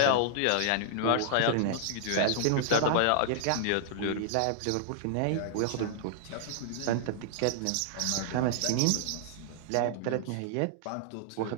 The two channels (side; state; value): both; different; correlation -0.01